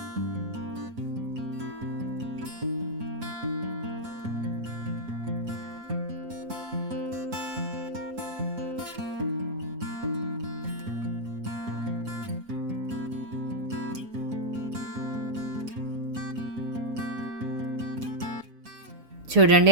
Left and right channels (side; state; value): left; late; 6.4 ms